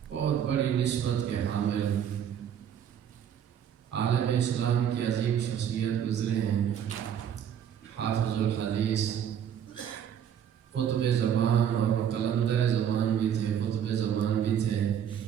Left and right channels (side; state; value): left; quieter; 9.0 dB